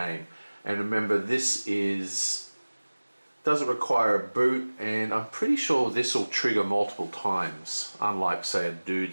And remember, this doesn't require a boot, and I'm pretty sure this will trigger multiple times, unlike, say, a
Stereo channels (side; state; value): both; inverted; correlation -1.00